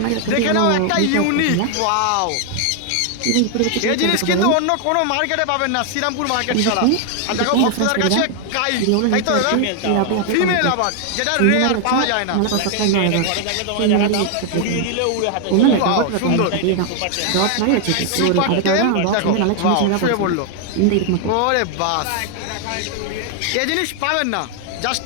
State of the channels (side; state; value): both; different; correlation 0.00